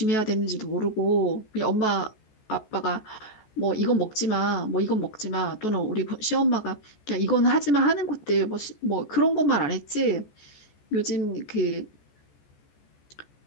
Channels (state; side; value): late; right; 14 ms